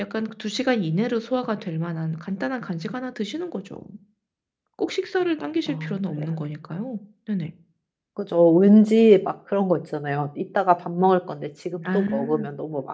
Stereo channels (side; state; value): both; identical; correlation 1.00